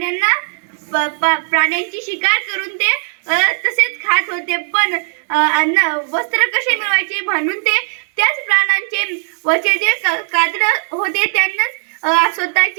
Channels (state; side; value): silent; left; digital silence